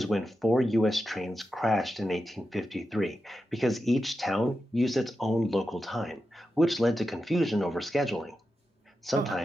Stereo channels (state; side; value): normal; both; correlation 0.90